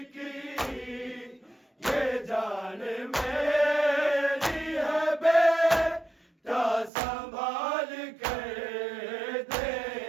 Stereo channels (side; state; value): left; drops out; at 6.9 s